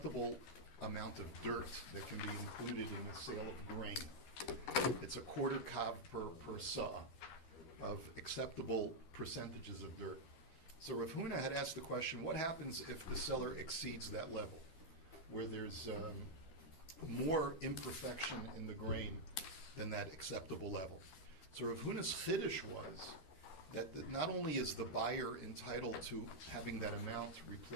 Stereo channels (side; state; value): right; late; 12 ms